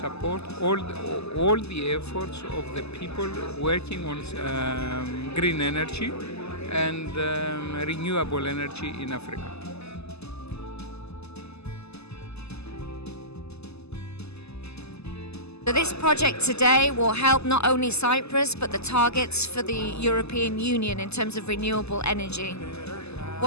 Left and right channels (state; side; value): late; right; 0.79 ms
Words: all the efforts of the people working on green energy and renewable energy in Africa. So this project today will help not only Cyprus but the targets for the European Union in terms of renewable energy.